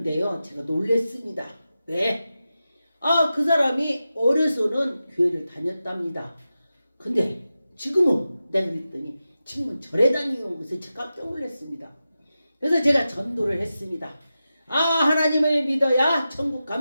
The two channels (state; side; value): inverted; both; correlation -0.92